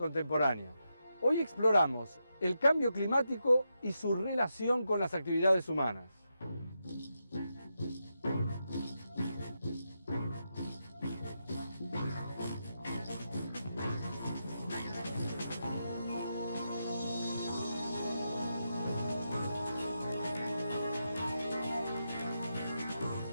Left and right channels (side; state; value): both; inverted; correlation -0.86